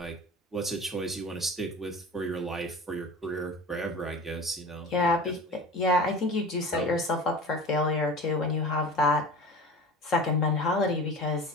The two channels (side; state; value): both; normal; correlation 0.36